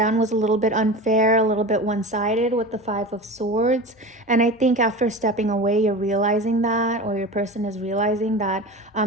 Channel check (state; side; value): normal; both; correlation 0.31